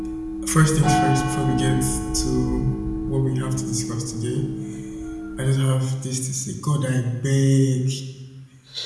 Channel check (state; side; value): identical; both; correlation 1.00